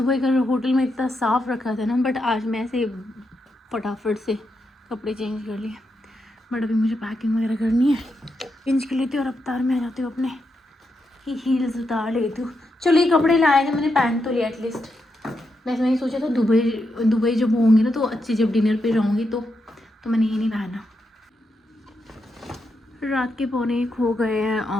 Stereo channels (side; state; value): both; normal; correlation 0.84